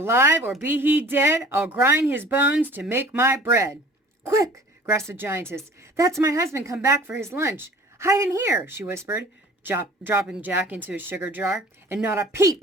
or be he dead, I'll grind his bones to make my bread." "Quick!" gasped the giantess. "That's my husband come back for his lunch. Hide in here," she whispered, dropping Jack into a sugar jar. "And not a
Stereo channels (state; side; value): normal; both; correlation 0.47